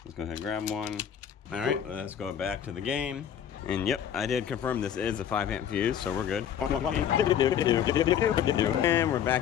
Let's go ahead and grab one. All right, let's go back to the game. And yep, I did confirm this is a 5 amp fuse, so we're good. And we're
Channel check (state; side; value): quieter; right; 9.2 dB